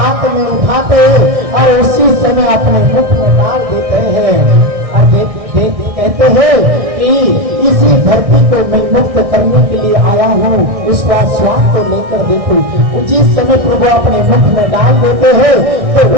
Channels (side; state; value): left; late; 1.6 ms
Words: में उठाते हैं और उसी समय अपने मुख में डाल देते हैं और कहते हैं कि इसी धरती को मैं मुक्त करने के लिए आया हूँ, उसका स्वाद को लेकर देखो। जिस समय प्रभु अपने मुख में डाल देते हैं तो